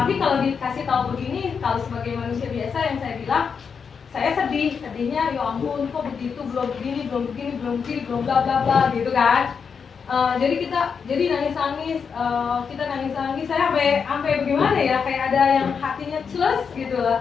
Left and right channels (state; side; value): quieter; right; 6.2 dB